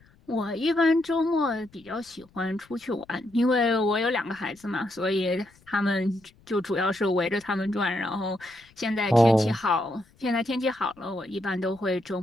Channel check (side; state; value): left; noise; rumble, 30 dB below the sound